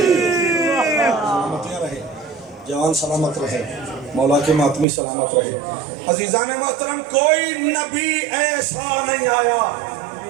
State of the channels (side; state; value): left; drops out; at 4.9 s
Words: جوان سلامت رہے، مولا کے ماتمی سلامت رہے۔ عزیزان محترم، کوئی نبی ایسا نہیں آیا